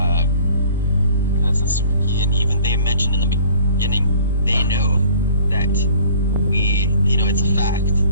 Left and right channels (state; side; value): inverted; both; correlation -0.51